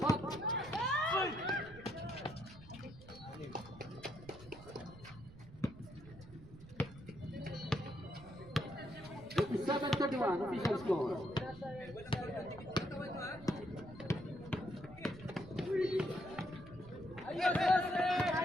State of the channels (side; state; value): right; noise; rumble, 18 dB below the sound